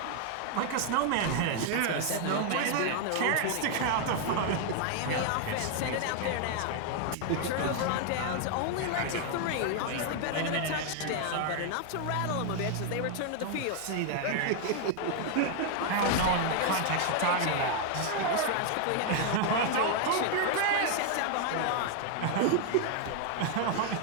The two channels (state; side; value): different; both; correlation 0.00